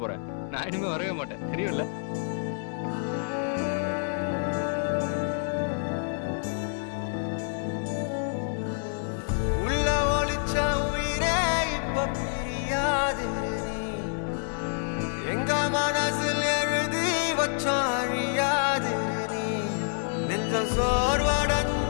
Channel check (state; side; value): silent; right; digital silence